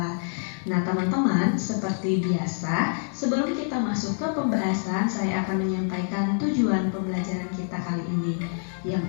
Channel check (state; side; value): silent; right; 61 dB below the other